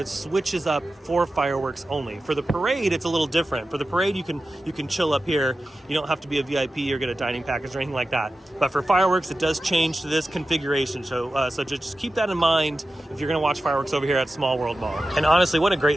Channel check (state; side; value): normal; both; correlation 0.93